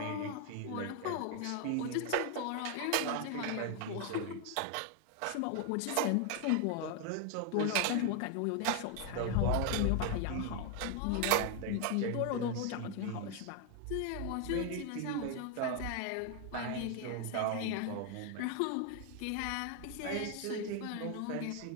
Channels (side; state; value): both; different; correlation 0.01